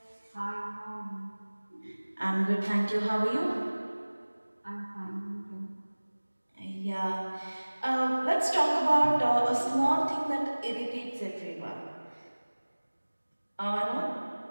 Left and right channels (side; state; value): both; inverted; correlation -1.00